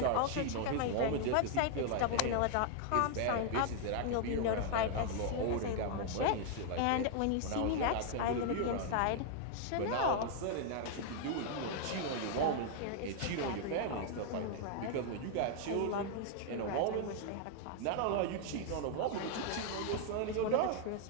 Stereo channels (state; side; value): different; both; correlation 0.00